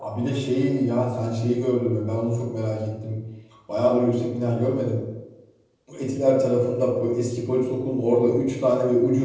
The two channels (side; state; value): both; identical; correlation 1.00